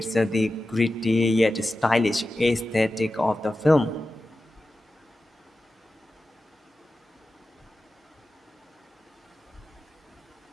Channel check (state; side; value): normal; both; correlation 0.93